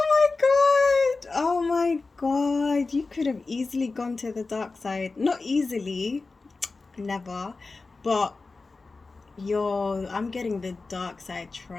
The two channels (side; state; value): right; quieter; 3.8 dB